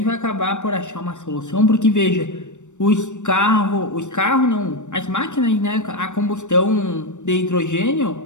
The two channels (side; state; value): right; late; 0.85 ms